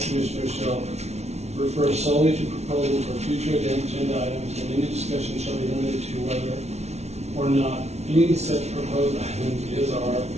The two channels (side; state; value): left; late; 0.31 ms